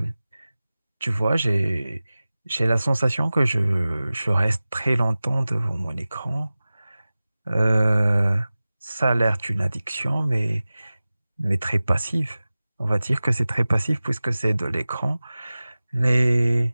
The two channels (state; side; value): inverted; both; correlation -0.97